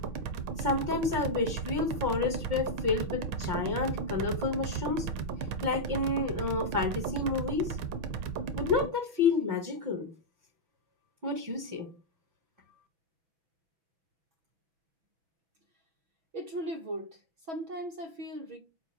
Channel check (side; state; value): left; late; 5.6 ms